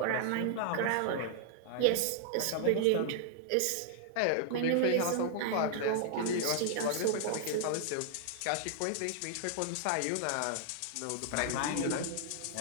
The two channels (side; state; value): both; different; correlation -0.01